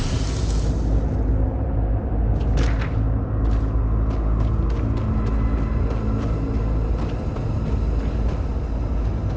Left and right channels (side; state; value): both; identical; correlation 1.00